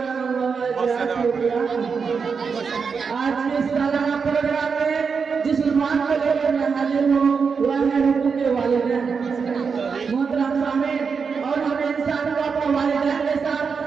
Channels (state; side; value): quieter; left; 5.6 dB